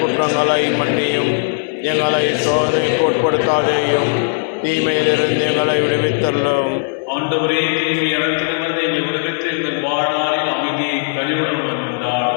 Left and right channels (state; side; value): silent; right; digital silence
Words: மன்னியும். எங்களை சோதனைக்கு உட்படுத்தாதேயும், தீமையிலிருந்து எங்களை விடுவித்தள்ளும். ஆண்டவரே, தீமை அனைத்திலிருந்து எங்களை விடுவித்து எங்கள் வாழ்நாளில் அமைதியை கனிவுடன்